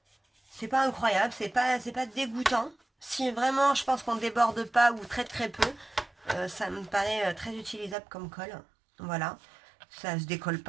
incroyable, c'est pas dégoûtant. Si vraiment je pense qu'on déborde pas ou très très peu, ça me paraît très utilisable comme colle. Voilà, ça se décolle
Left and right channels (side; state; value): left; drops out; at 8.0 s